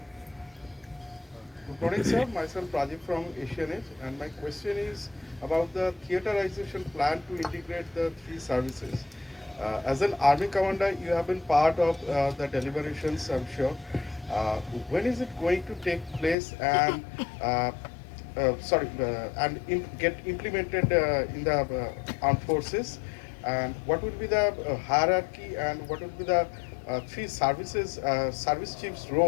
Good morning, sir. Myself Pradeep from Asian Age, and my question is about the theaterization plan to integrate the three services. As an army commander, you have been part of the deliberations, I'm sure. When is it going to take place and get implemented in the armed forces? And what will be the hierarchy and what will be the three services, service chief's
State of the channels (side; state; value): right; drops out; at 16.4 s